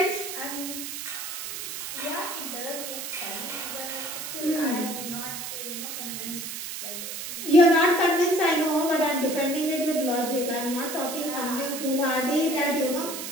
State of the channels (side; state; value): right; noise; hiss, 6 dB below the sound